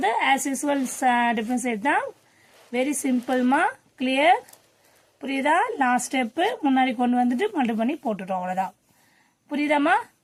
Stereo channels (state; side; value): identical; both; correlation 1.00